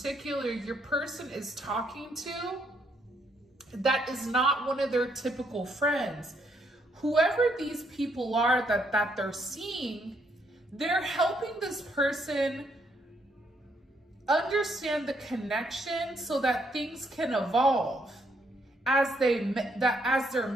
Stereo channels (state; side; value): normal; both; correlation 0.73